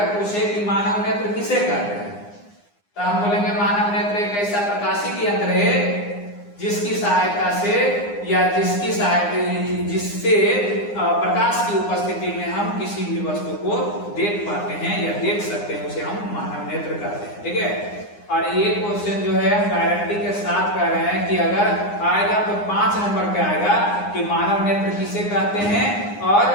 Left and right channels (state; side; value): late; right; 9.8 ms